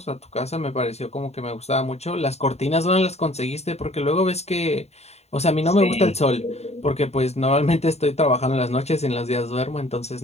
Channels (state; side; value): late; right; 0.31 ms